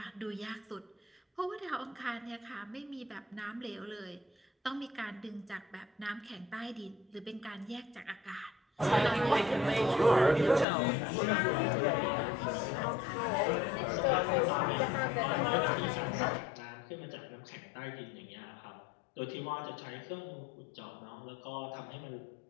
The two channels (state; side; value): drops out; right; at 10.7 s